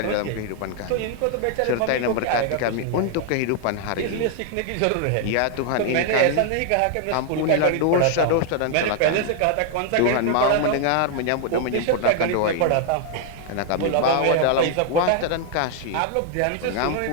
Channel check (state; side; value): different; both; correlation 0.00